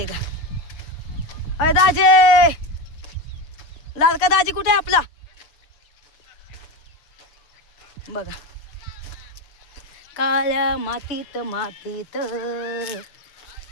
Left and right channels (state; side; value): late; right; 6.8 ms